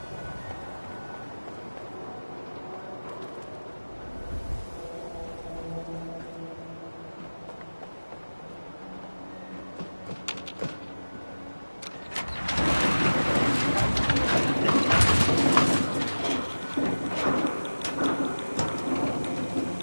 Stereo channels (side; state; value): both; inverted; correlation -1.00